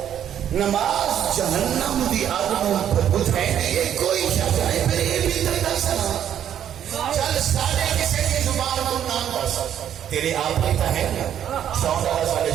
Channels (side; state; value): left; quieter; 9.9 dB